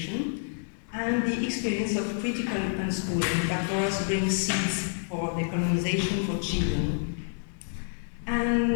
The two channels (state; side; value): silent; right; digital silence